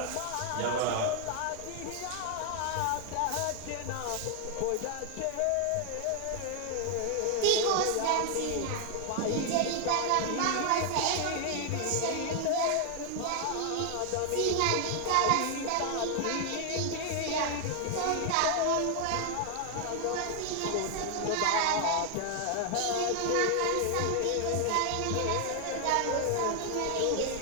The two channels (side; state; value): both; different; correlation 0.00